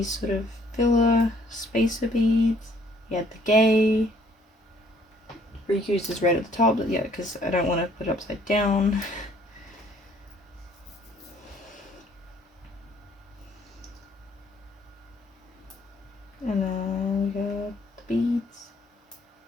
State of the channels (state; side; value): normal; both; correlation 0.62